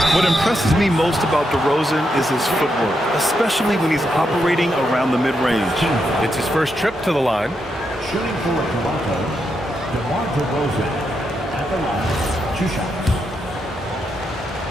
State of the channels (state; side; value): normal; both; correlation 0.82